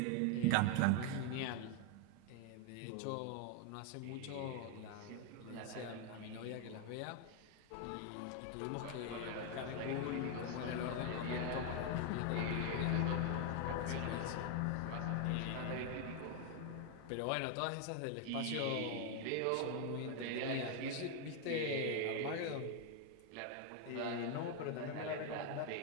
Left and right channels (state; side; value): different; both; correlation 0.01